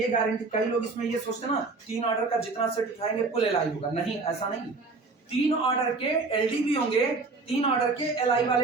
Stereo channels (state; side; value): quieter; left; 3.9 dB